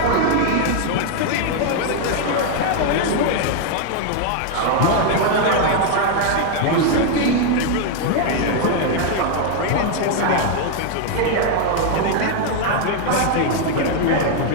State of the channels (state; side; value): different; both; correlation 0.00